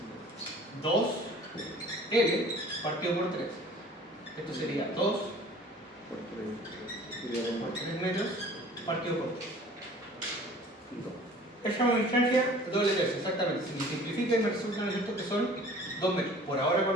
2L partido por 3. Esto sería 2 por 3 metros partido por 3. Esa es una distancia doble tercio, exactamente. Si me simplifica y me resulta, ¿no es cierto?, que son 2 metros. Por ahora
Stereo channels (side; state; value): both; normal; correlation 0.48